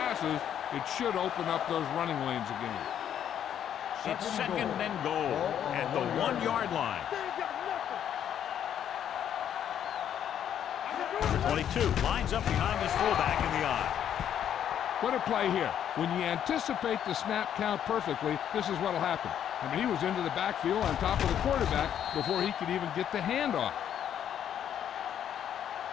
It should open up those running lanes again. It's 2nd and goal at the 1-yard line. They ain't got nothing. Number 22 lines up behind his fullback in the eye. What a play here. When you anticipate the snap count perfectly, this is what will happen. I mean, he was into the backfield on top of the quarterback before he could even get the handoff.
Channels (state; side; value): quieter; right; 9.7 dB